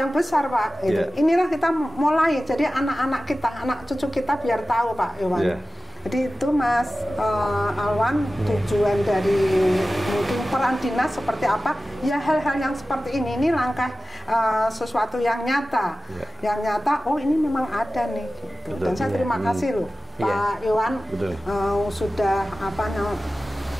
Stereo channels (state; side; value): normal; both; correlation 0.95